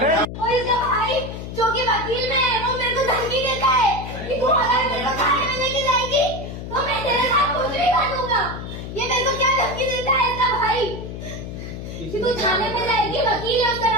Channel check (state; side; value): noise; left; hum, 8 dB below the sound